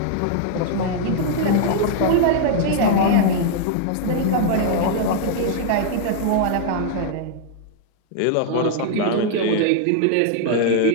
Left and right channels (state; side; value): different; both; correlation -0.01